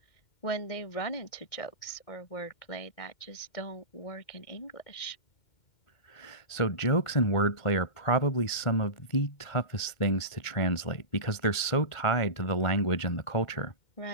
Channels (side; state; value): right; late; 2.1 ms